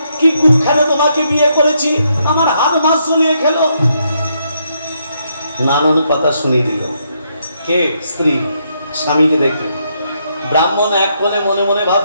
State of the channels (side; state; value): both; inverted; correlation -0.76